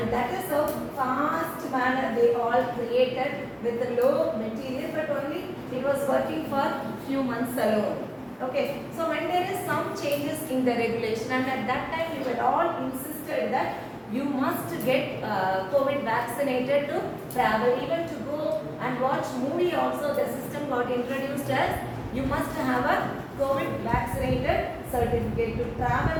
that is how fast manner they all created with the low material, but only it was working for few months alone. Okay, so when there is some changes in the regulation, and at that time we were all insisted that you must get COVID vaccinated to travel, even to go and watch movie also. The system got introduced as you must have a COVID vaccinated certificate to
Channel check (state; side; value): identical; both; correlation 1.00